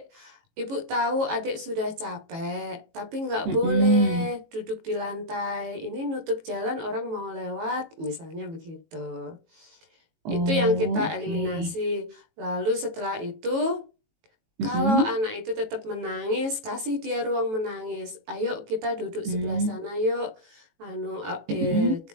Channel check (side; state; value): left; late; 18 ms